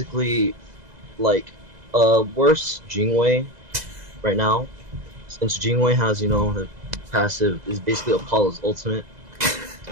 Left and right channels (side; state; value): left; late; 2.0 ms